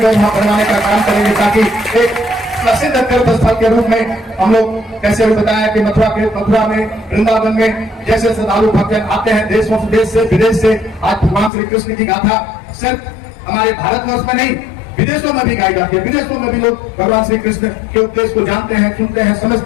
वहां बनवाने का काम करेंगे, ताकि एक प्रसिद्ध तीर्थ स्थल के रूप में हम लोग कैसे बताया कि मथुरा में, वृंदावन में जैसे श्रद्धालु भक्त आते हैं देश से विदेश से। आज भगवान श्री कृष्ण की गाथा सिर्फ हमारे भारतवर्ष में नहीं, विदेशों में भी गाई जाती है। विदेशों में भी लोग भगवान श्री कृष्ण के उपदेश को जानते हैं, सुनते हैं,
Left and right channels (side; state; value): right; drops out; at 11.5 s